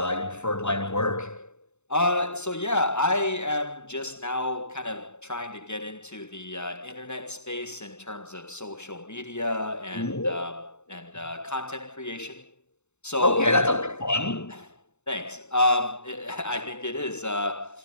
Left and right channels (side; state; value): right; late; 0.82 ms